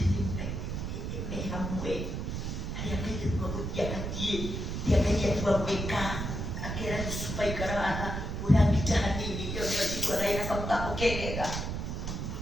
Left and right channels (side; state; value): right; noise; rumble, 3 dB below the sound